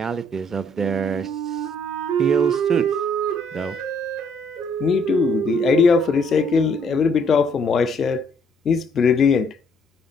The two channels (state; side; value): normal; both; correlation 0.66